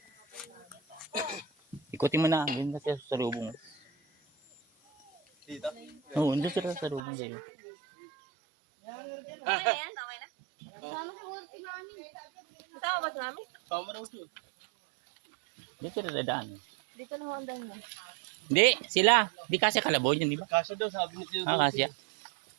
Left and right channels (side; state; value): left; drops out; at 7.0 s